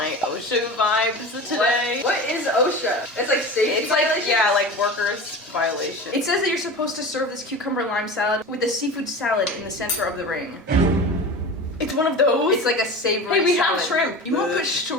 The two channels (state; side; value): normal; both; correlation 0.32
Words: OSHA vibes today. What is OSHA? It's like safety It's like, violations? yeah, like workers violation. It says that you're supposed to serve this cucumber lime salad with a seafood salad in the center of the ring. It's one of those? It's like a savory Hey, we salad. have shrimp. You want to put